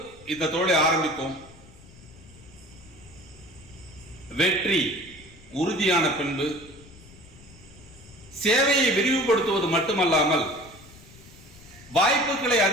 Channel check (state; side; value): noise; left; rumble, 22 dB below the sound